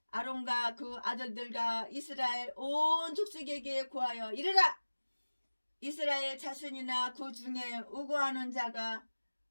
아론과 그 아들들과 이스라엘 온 족속에게 고하여 이르라. 이스라엘 자손이나 그 중에 우고하는 자가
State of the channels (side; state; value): both; inverted; correlation -1.00